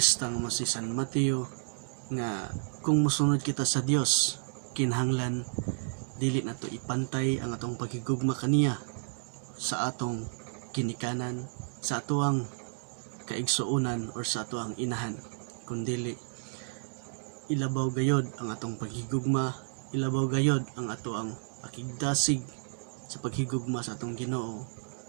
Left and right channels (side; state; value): left; silent; digital silence